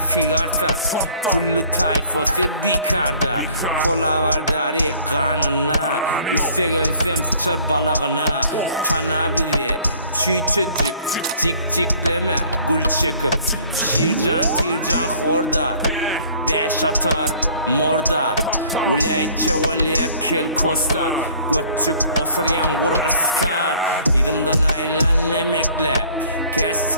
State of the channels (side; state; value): both; inverted; correlation -0.54